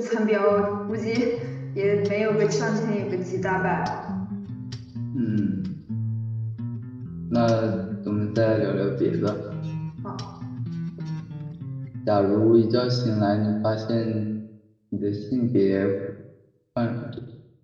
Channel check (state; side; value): identical; both; correlation 1.00